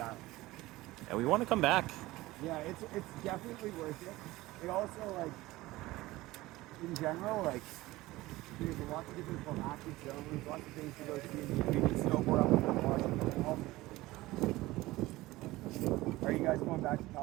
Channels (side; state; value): left; quieter; 18.7 dB